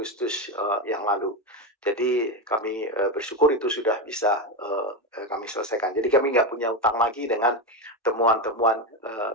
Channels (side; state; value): both; normal; correlation 0.13